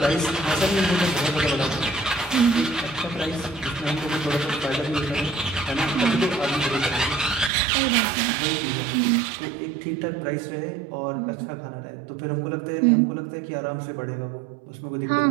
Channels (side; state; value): left; drops out; at 7.5 s